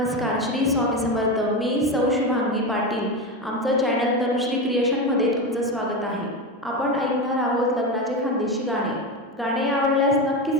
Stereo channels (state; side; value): normal; both; correlation 0.18